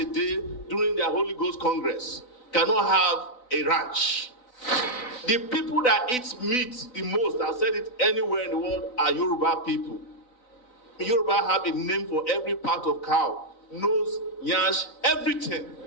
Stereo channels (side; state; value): right; late; 4.0 ms